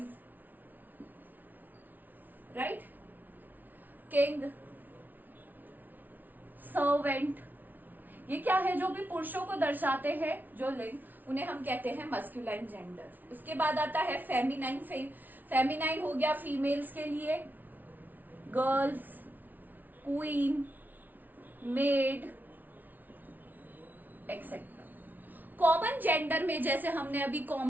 right, king, servant, ये क्या है, जो भी पुरुषों को दर्शाते हैं, जो लिंग, उन्हें हम कहते हैं मस्क्यूलाइन जेंडर। उसके बाद आता है फेमिनाइन। फेमिनाइन हो गया फीमेल्स के लिए, girls, queen, made, etcetera. Common gender में, जैसे हमने अभी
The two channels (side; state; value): left; late; 0.083 ms